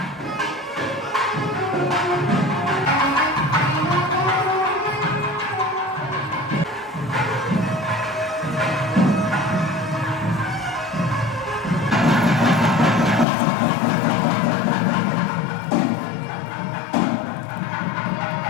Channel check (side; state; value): right; drops out; at 13.2 s